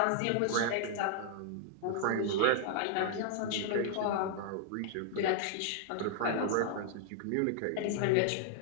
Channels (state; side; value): different; both; correlation -0.01